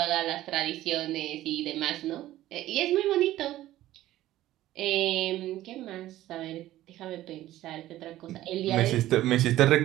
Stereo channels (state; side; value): quieter; left; 14.7 dB